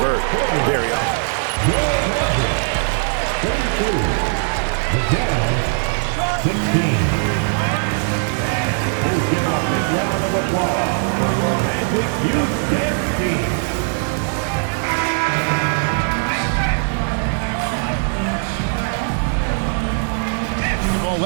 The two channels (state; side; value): silent; left; 58 dB below the other